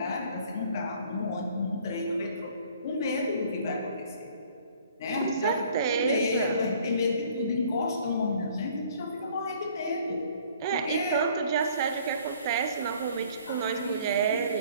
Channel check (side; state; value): both; inverted; correlation -0.55